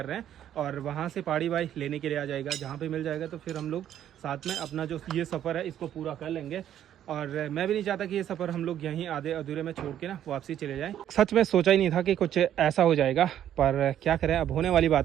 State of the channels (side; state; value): left; quieter; 10.8 dB